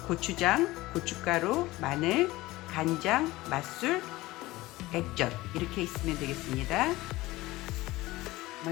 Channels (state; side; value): quieter; right; 19.0 dB